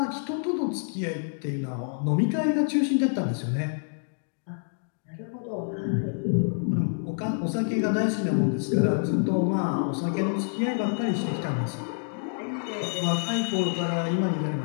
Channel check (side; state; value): right; silent; digital silence